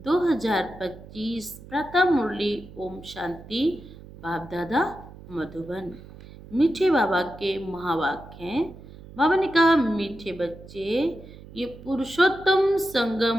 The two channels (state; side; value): noise; right; hum, 18 dB below the sound